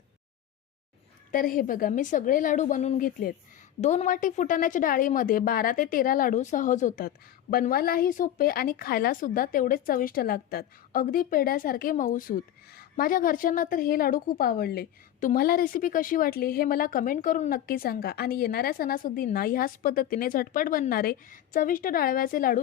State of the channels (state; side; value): quieter; right; 11.6 dB